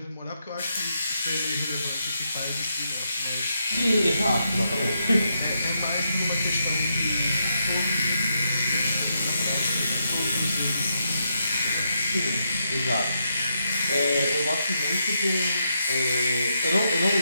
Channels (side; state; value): both; inverted; correlation -0.80